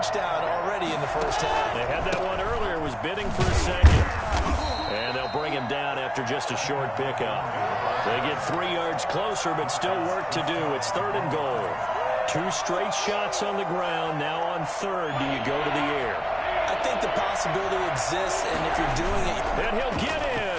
already in the first half. They had that one earlier, was bidding for a second. And they'll bring him down after just a short pickup. They get 3 yards closer, but still work to do. It's third and goal. 2 straight shots on the ground. Now on third, do you go to the air? I think the possibility exists, and if you're doing it... And he'll get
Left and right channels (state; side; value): identical; both; correlation 1.00